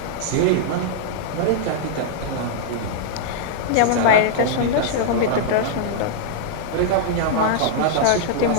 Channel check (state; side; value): different; both; correlation -0.02